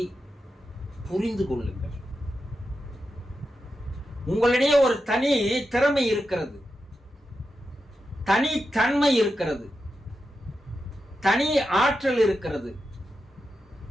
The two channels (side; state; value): both; normal; correlation 0.89